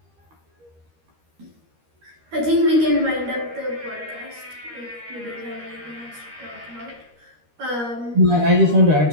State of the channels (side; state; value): left; late; 13 ms